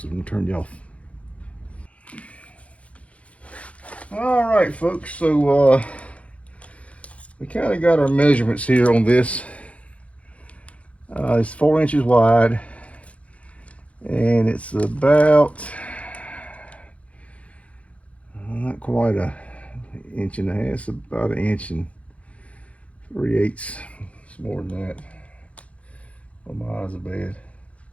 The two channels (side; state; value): right; late; 0.064 ms